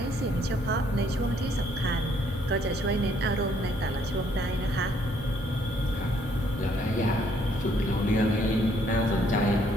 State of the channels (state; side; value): normal; both; correlation 0.66